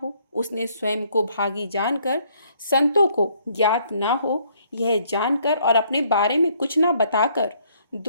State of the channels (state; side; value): inverted; both; correlation -0.66